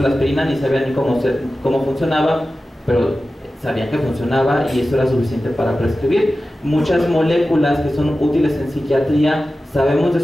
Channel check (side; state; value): both; normal; correlation 0.94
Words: la aspirina ni sabían ni cómo funcionaba, pero sabían que funcionaba y eso era suficiente para prescribir. Muchas moléculas que son útiles en psiquiatría, sabemos de